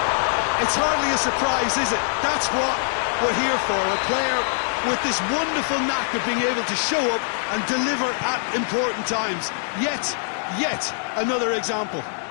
It's hardly a surprise, is it? That's what we're here for, a player with this wonderful knack of being able to show up and deliver at important times. Yet another example.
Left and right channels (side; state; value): right; silent; digital silence